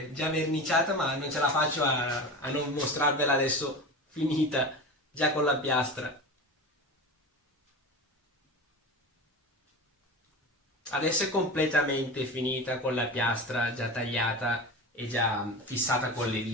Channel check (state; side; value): normal; both; correlation 0.29